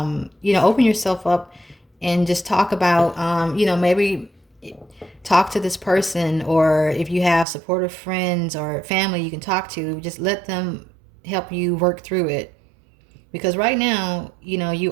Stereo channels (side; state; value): left; drops out; at 7.5 s